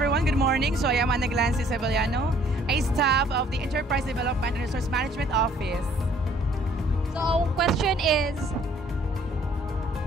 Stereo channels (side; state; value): both; normal; correlation 0.60